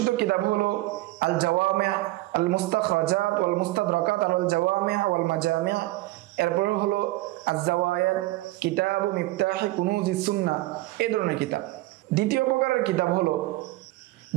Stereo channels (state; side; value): quieter; left; 19.0 dB